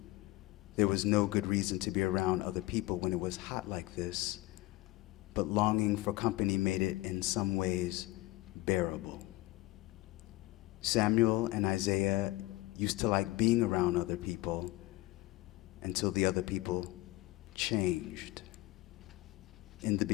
there was no good reason to be around other people when it was hot like this, but longing for company made it in some ways bearable. Samuel and Isaiah used to like being around other people until the other people changed. In the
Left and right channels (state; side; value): quieter; right; 19.3 dB